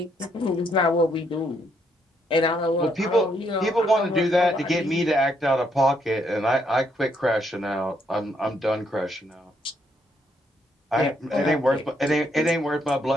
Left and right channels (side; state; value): both; normal; correlation 0.73